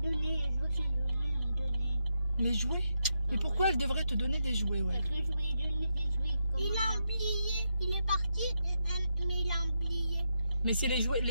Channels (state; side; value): inverted; both; correlation -0.84